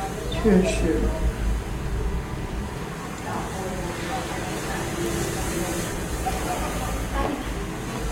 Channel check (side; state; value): both; identical; correlation 1.00